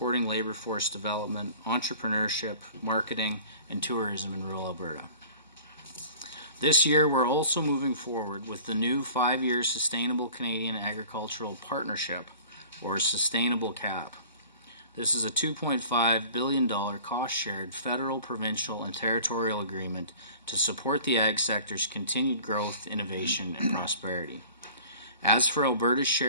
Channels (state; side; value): inverted; both; correlation -0.46